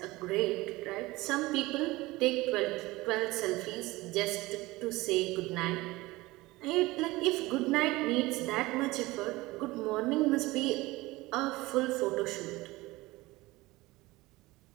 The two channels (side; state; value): left; quieter; 20.3 dB